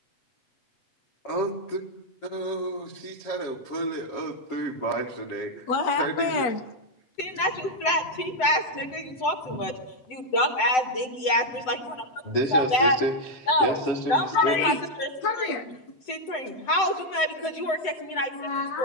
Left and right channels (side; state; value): right; late; 7.9 ms